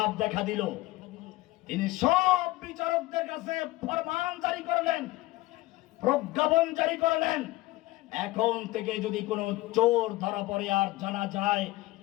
দেখা দিল, তিনি সব বিচারকদের কাছে ফরমান জারি করলেন, প্রজ্ঞাপন জারি করলেন, এখন থেকে যদি কোনো চোর ধরা পড়ে আর জানা যায়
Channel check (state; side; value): quieter; right; 18.9 dB